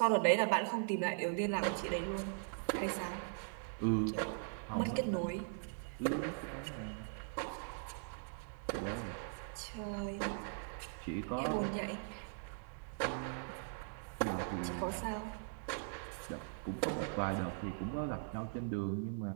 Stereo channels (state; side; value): silent; left; digital silence